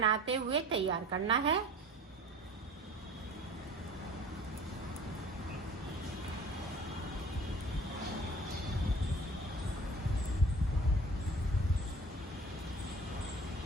हुए तैयार करना है।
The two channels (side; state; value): both; normal; correlation 0.45